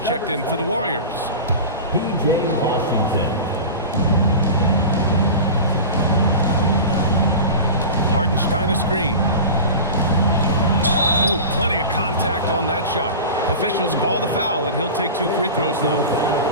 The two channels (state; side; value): inverted; both; correlation -0.31